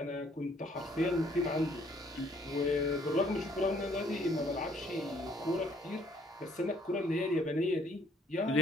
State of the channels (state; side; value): normal; both; correlation 0.63